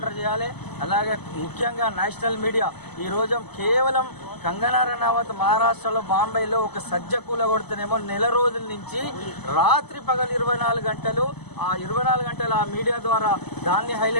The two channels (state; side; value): late; right; 0.99 ms